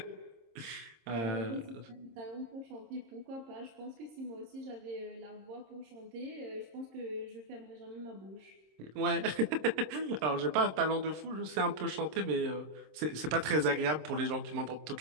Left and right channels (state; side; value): late; left; 26 ms